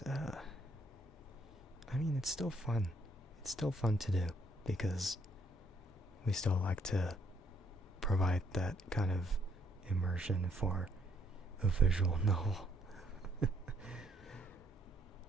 I mean, it's still fun. It's still fun to do because we still like to provide that kind of immersion for a visual novel.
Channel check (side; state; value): both; normal; correlation 0.69